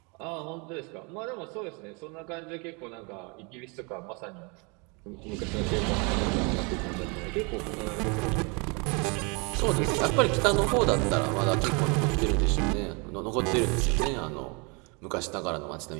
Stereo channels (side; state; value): left; quieter; 31.3 dB